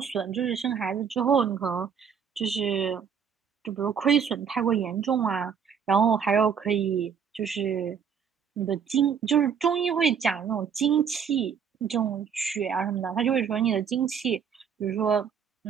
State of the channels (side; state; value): left; quieter; 7.2 dB